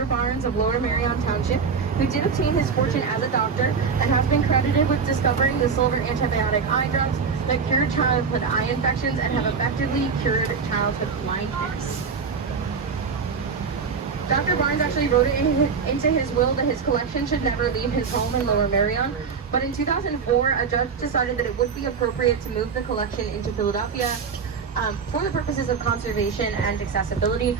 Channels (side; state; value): left; quieter; 5.6 dB